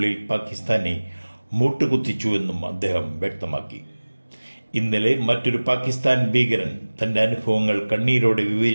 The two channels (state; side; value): inverted; both; correlation -1.00